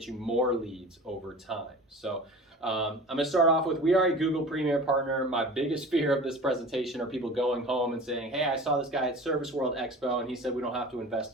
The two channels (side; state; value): both; normal; correlation 0.39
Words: you more leads over time. So I'm going to start off with, we are a Google Premier Partner. My biggest fear of this presentation are people going home and saying, hey, I saw this guy at Service World Expo and he said we don't have to